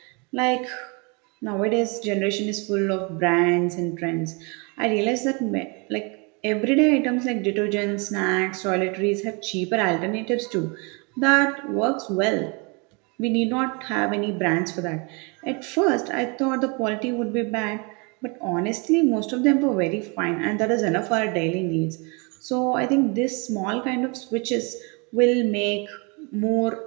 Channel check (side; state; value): left; quieter; 31.5 dB